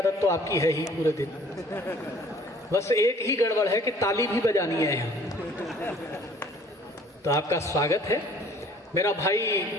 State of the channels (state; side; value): normal; both; correlation 0.54